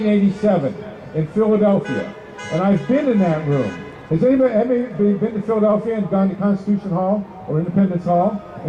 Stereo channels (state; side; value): identical; both; correlation 1.00